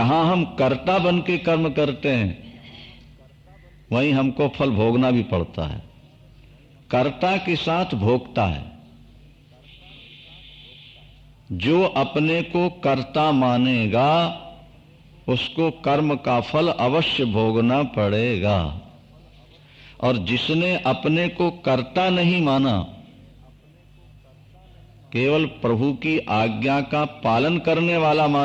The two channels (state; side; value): identical; both; correlation 1.00